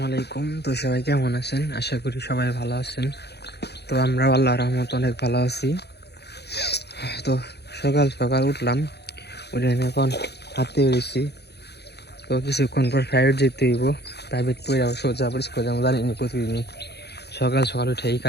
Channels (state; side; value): late; right; 0.48 ms